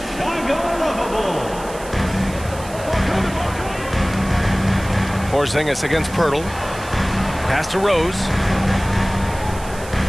lovable. Porzingis against Pirtle. Pass to Rose.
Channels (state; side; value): noise; right; hiss, 17 dB below the sound